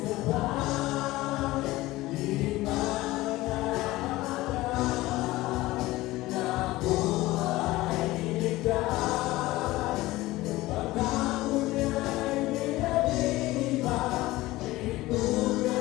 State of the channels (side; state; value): right; quieter; 18.4 dB